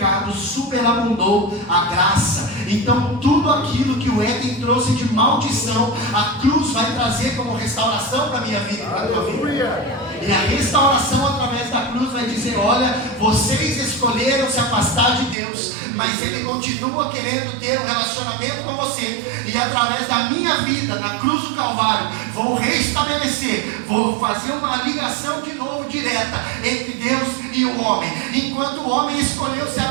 superabundou a graça. Então tudo aquilo que o Éden trouxe de maldição, a cruz vai trazer como restauração para a minha vida e para a tua vida. E a restauração através da cruz vai dizer, olha, vocês escolheram se afastar de Deus, mas Ele continua querendo ter um relacionamento com você, e através da minha vida, na cruz do Calvário, vou restabelecer, vou fazer uma ligação de novo, direta, entre Deus e o homem. Enquanto o homem escolheu se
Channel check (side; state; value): left; drops out; at 15.4 s